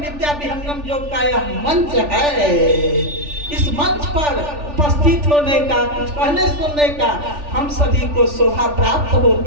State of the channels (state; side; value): late; left; 3.4 ms